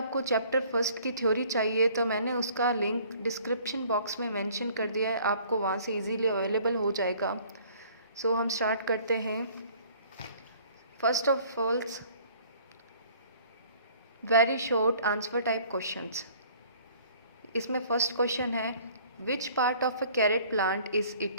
चैप्टर फर्स्ट की थ्योरी चाहिए तो मैंने उसका लिंक डिस्क्रिप्शन बॉक्स में मेंशन कर दिया है, आपको वहाँ से इजीली अवेलेबल हो जाएगा। सो हम स्टार्ट करते हैं। First of all, very short answer type questions. इसमें फर्स्ट क्वेश्चन है, which part of a carrot plant is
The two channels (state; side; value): inverted; both; correlation -0.55